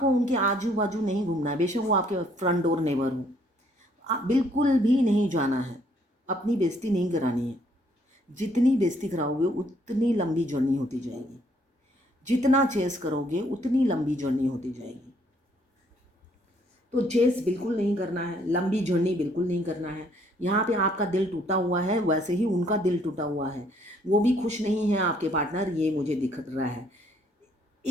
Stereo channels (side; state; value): both; normal; correlation 0.66